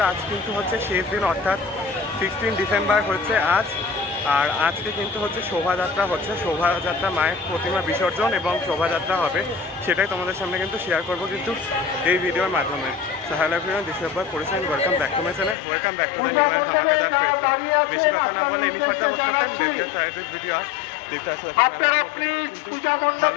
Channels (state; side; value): drops out; right; at 15.6 s